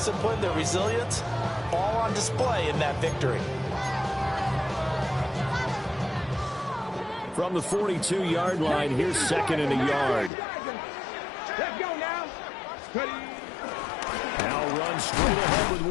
their resilience, all on display in that victory. From the 42-yard line, here's 2nd and a yard. Let's go now. Now runs straight ahead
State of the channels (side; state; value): right; drops out; at 10.3 s